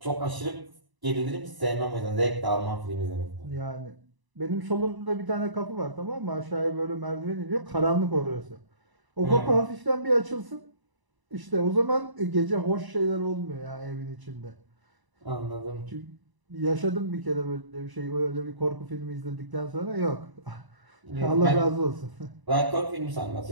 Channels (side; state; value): left; late; 1.0 ms